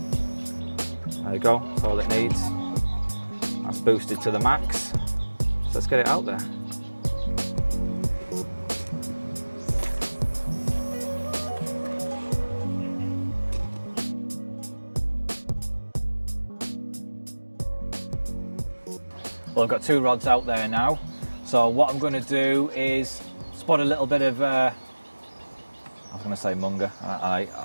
There you go, that's all it needs. That's boosted to the max. So let's get it out there. Well, I've got 2 rods out there now. So what I'm going to do is spot a little bit of, I was going to say munger.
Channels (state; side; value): inverted; both; correlation -1.00